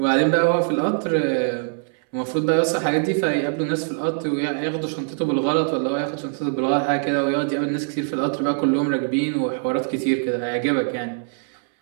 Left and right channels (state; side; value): silent; left; 64 dB below the other